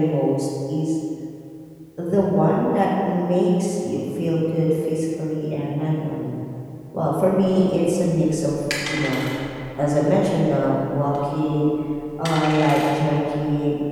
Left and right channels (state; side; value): identical; both; correlation 1.00